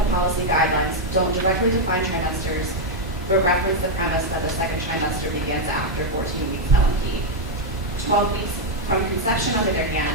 policy guidelines don't directly define trimesters, but reference the premise that the second trimester begins after 14 weeks LMP. 12 weeks from conception, on the other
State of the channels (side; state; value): both; normal; correlation 0.00